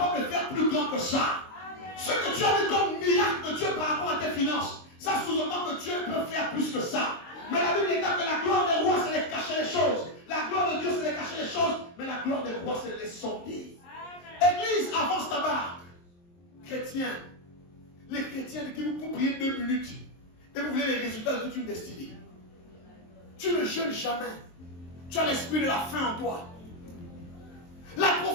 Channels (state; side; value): late; right; 23 ms